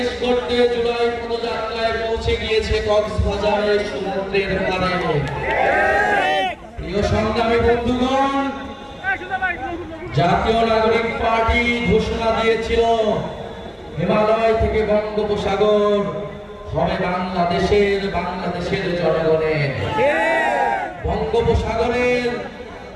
গড়তে জুলাই পদযাত্রায় পৌঁছে গিয়েছে কক্সবাজারের সমুদ্রের পাড়ে। প্রিয় সংগ্রামী বন্ধুগণ, জাতীয় নাগরিক পার্টি ঘোষণা দিয়েছিল হিমালয় থেকে বঙ্গোপসাগর হবে বাংলাদেশের জনগণের। বঙ্গোপসাগরের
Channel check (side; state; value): both; identical; correlation 1.00